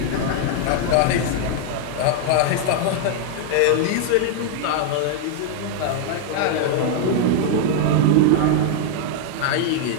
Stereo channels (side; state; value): both; different; correlation 0.00